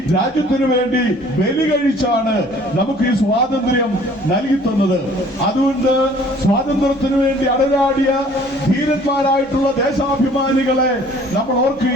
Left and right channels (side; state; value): left; noise; hum, 28 dB below the sound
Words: രാജ്യത്തിനു വേണ്ടി ബലി കഴിച്ചാണ് നമുക്ക് ഈ സ്വാതന്ത്ര്യം നൽകി തന്നത്. അതുകൊണ്ട് സ്വാതന്ത്ര്യത്തിനു വേണ്ടി അടരാടിയ ധീരന്മാരായിട്ടുള്ള ദേശാഭിമാനികളെ നമ്മൾ